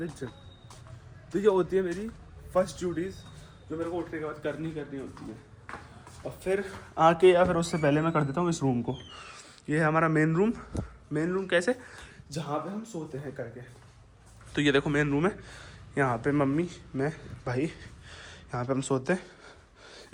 जिम। तो ये होती है मेरी फर्स्ट ड्यूटीज़, जो मेरे को उठने के बाद करनी होती है। और फिर आके, या फिर उससे पहले मैं कर देता हूँ इस रूम को। ये है हमारा मेन रूम कैसे, जहाँ पे हम सोते हैं करके। तो ये देखो मेन रूम है, यहाँ पे मम्मी, मैं, भाई, यहाँ पे हम सोते हैं।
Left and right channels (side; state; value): both; identical; correlation 1.00